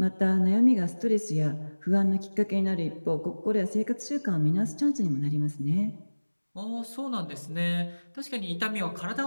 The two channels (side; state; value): both; inverted; correlation -1.00